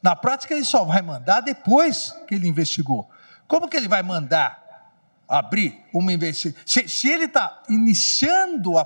Na prática, ele só vai mandar depois que ele investigou. Como que ele vai mandar abrir uma investigação? Se ele está iniciando a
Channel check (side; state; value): both; inverted; correlation -1.00